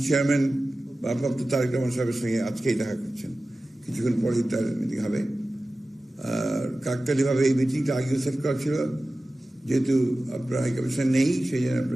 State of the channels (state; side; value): normal; both; correlation 0.96